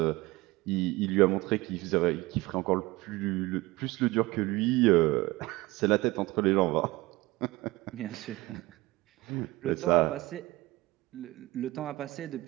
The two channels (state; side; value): quieter; left; 20.4 dB